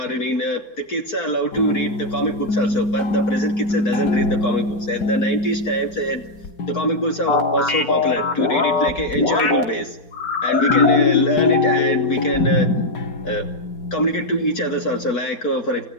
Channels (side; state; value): right; late; 4.2 ms